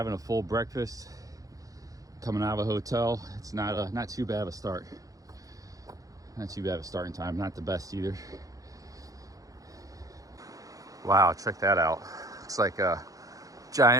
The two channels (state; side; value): late; left; 0.17 ms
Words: a full breakfast. Coming out of a hotel, it's not too bad of a start. Not too bad of a starting time. Not the best either. Wow, check that out. Looks like a